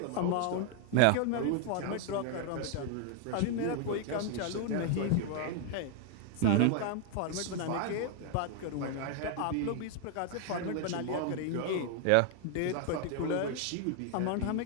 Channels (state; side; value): different; both; correlation 0.00